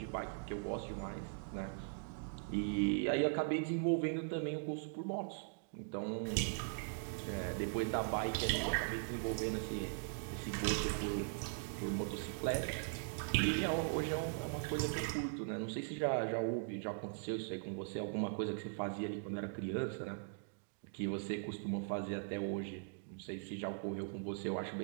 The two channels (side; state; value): left; silent; digital silence